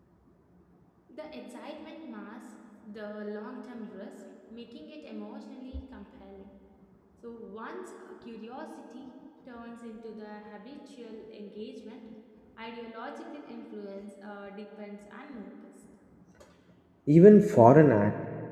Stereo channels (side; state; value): both; identical; correlation 1.00